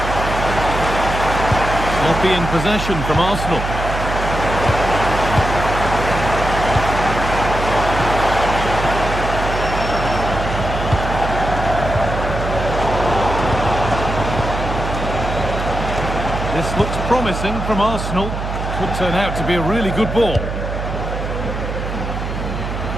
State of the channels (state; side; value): noise; right; hum, 5 dB below the sound